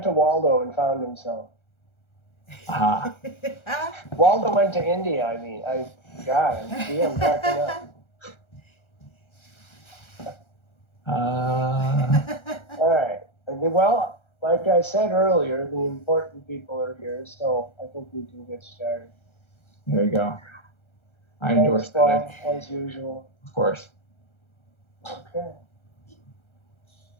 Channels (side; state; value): right; late; 1.3 ms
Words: to Waldo and found himself. Aha. Waldo went to India. I mean, I'm cracking up. All right. Well, like I said earlier, the important people are here, so I think we can get started. There you go. I endorse that. As usual. Of course. Okay.